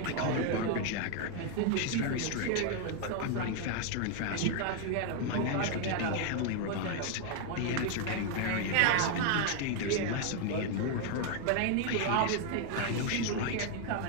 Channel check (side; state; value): both; different; correlation 0.01